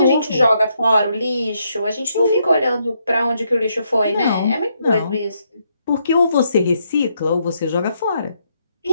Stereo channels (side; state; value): both; inverted; correlation -0.76